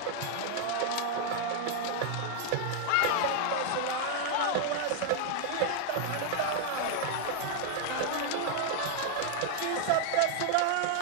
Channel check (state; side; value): different; both; correlation 0.00